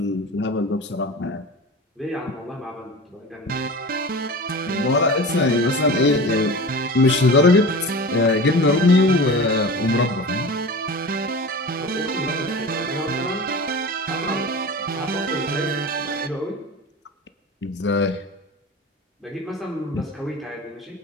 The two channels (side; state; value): both; normal; correlation 0.33